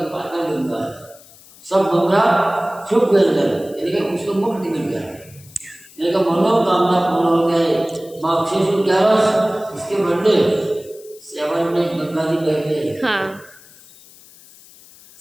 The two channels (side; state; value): left; noise; hiss, 23 dB below the sound